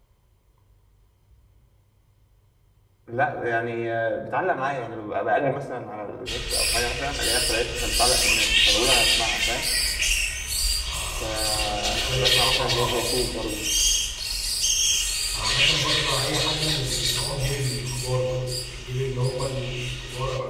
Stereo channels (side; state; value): both; identical; correlation 1.00